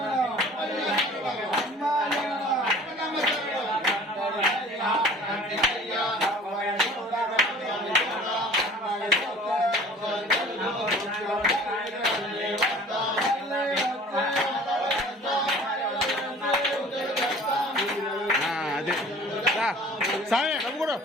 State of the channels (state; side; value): normal; both; correlation 0.47